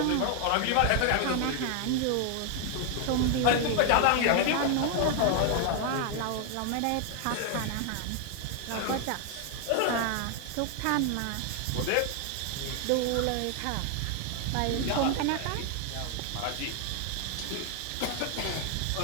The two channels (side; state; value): both; different; correlation 0.00